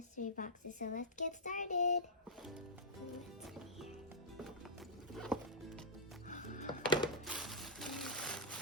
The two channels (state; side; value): normal; both; correlation -0.11